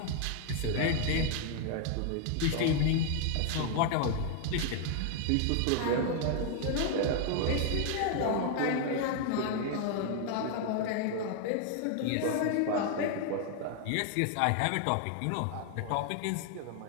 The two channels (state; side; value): different; both; correlation 0.00